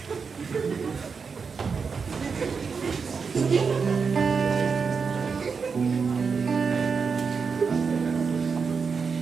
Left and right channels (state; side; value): quieter; left; 5.4 dB